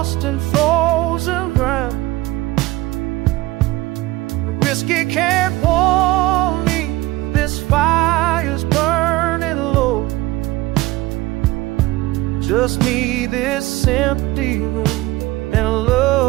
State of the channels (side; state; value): left; quieter; 18.8 dB